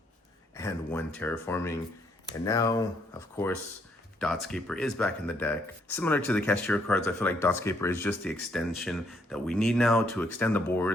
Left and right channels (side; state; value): both; normal; correlation 0.71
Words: and 1 Terraforming. And now, of course, Dotscaper is back in the deck. Similar to the Kashtira cards, I feel like Dotscaper is just the extension that we need now to extend the